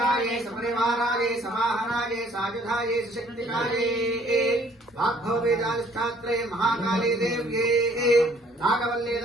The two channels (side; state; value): both; normal; correlation 0.60